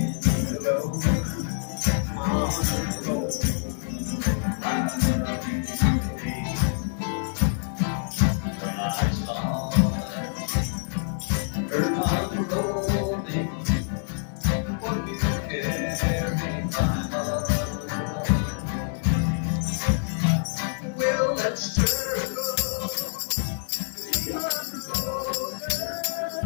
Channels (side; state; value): right; silent; digital silence